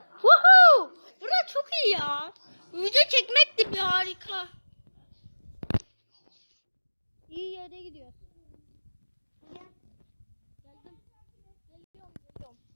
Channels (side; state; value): both; inverted; correlation -1.00